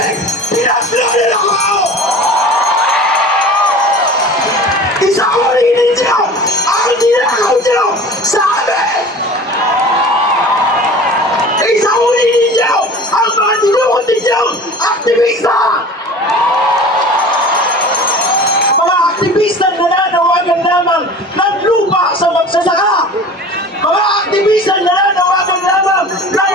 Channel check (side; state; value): both; normal; correlation 0.40